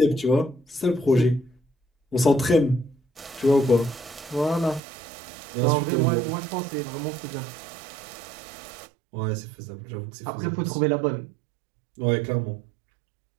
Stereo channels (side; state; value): left; drops out; at 4.8 s